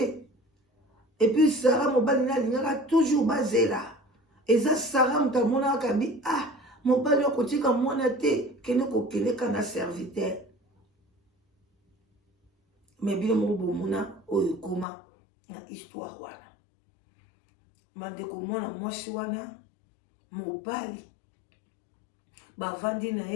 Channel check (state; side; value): drops out; right; at 14.9 s